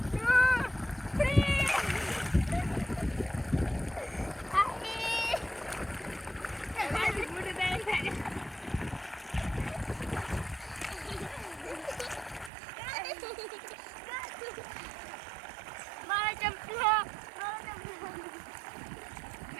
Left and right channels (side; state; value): left; drops out; at 12.5 s